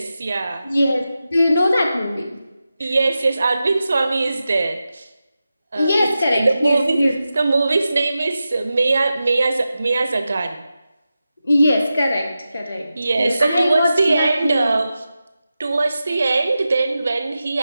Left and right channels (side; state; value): both; inverted; correlation -0.92